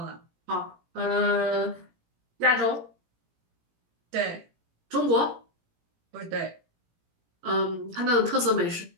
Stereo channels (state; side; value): late; left; 17 ms